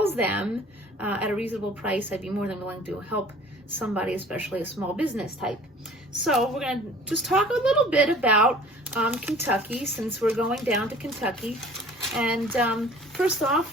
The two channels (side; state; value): both; normal; correlation 0.48